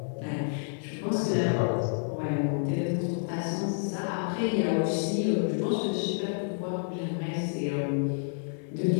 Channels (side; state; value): right; silent; digital silence